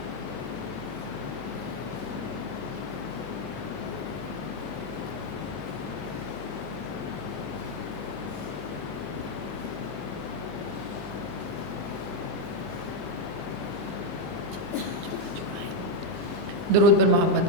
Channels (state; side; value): noise; right; hum, 13 dB below the sound